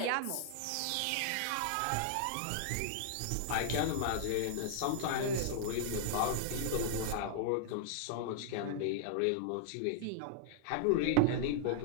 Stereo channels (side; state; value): both; different; correlation 0.00